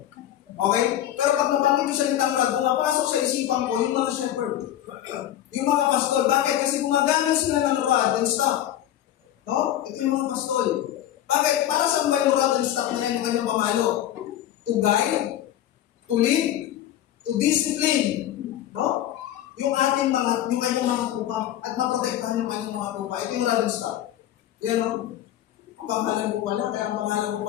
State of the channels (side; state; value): right; quieter; 12.1 dB